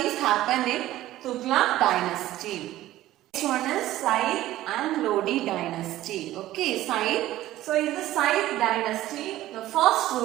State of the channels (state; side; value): quieter; left; 14.9 dB